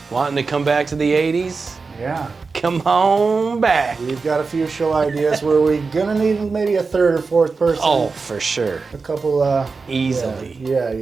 wanting to come back to the 80s, Yeah. come on back. We've got a few show ideas where we're gonna need maybe a third or fourth person. Oh, for sure. A couple, Easily.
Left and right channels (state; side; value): quieter; left; 4.5 dB